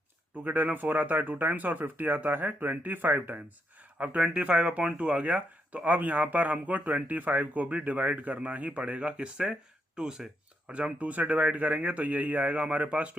2 के टेबल में 4 आता है 2 टाइम्स, और 50 आता है 25 टाइम्स। अब 25/2 आ गया, तो अब यहाँ पर हमको 25 को भी डिवाइड करना ही पड़ेगा, किससे, 2 से। और जब हम 2 से डिवाइड करेंगे तो यही आएगा हमारे पास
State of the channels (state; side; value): normal; both; correlation 0.80